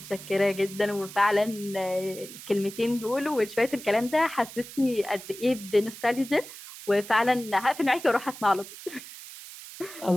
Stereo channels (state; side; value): noise; right; hiss, 14 dB below the sound